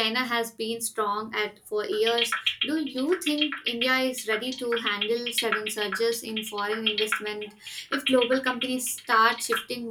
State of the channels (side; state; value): both; identical; correlation 1.00